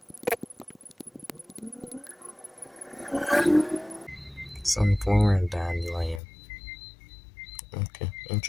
Sunflower and Dandelion. Okay,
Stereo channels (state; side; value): drops out; right; at 6.2 s